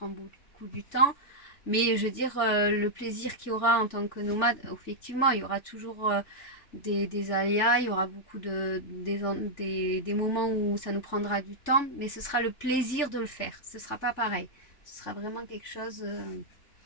beaucoup du temps. Mais je veux dire, le plaisir qu'il y aura en tant que nomade, effectivement, il y aura toujours des aléas, il y aura beaucoup des moments où ça nous prendra du temps, mais ce sera le plaisir de le faire. Ce sera pas pareil. Ce sera vraiment quelque chose...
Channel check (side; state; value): right; late; 3.4 ms